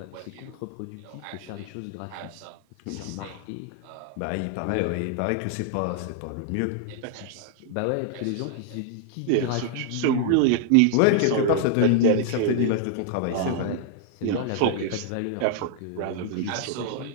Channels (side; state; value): both; different; correlation 0.00